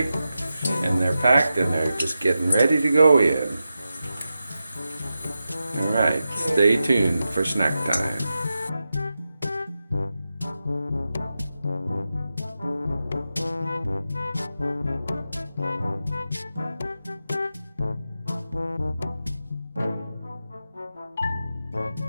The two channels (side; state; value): both; inverted; correlation -0.90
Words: And they're packed and they're just getting ready to go in. Alright, stay tuned for snack time.